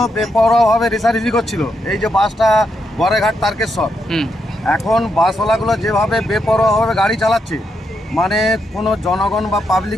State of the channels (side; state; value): both; normal; correlation 0.81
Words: বেপরোয়াভাবে রেষারেষি করছিল। এই যে বাসটা গড়েঘাট তারকেশ্বর, এখন বাসওয়ালাগুলো যেভাবে বেপরোয়াভাবে গাড়ি চালাচ্ছে, মানে কোনো জনগণ বা